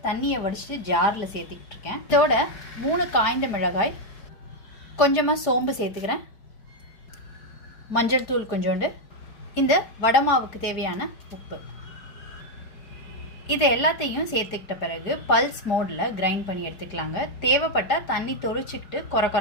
தண்ணியை வடிச்சிட்டு ஜாரில் சேர்த்துக்கிட்டு இருக்கேன். இதோட 3 காய்ந்த மிளகாய், கொஞ்சமாக சோம்பு சேர்த்துக்கிறேன், மஞ்சள் தூள் கொஞ்சோண்டு, இந்த வடை மாவுக்கு தேவையான உப்பு. இது எல்லாத்தையும் சேர்த்துக்கிட்ட பிறகு பல்ஸ் மோடில் கிரைண்ட் பண்ணி எடுத்துக்கலாங்க. தேவைப்பட்டால் தண்ணி தொளிச்சிக்கிட்டு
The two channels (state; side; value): late; right; 4.9 ms